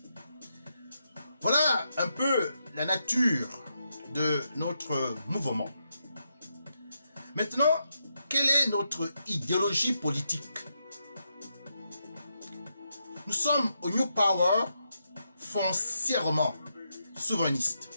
Voilà un peu la nature de notre mouvement. Maintenant, quelle est notre idéologie politique? Nous sommes au New Power foncièrement souverainistes,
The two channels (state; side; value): inverted; both; correlation -0.83